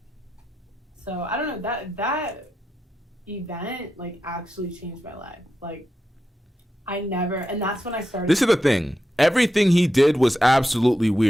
So I don't know, that event like actually changed my life. Like, and that's when I started. This is the thing. Everything he did was absolutely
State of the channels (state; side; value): normal; both; correlation 0.88